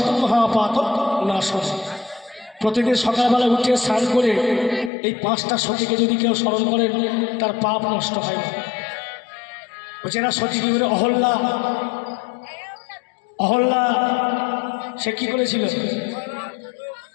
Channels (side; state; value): right; drops out; at 4.9 s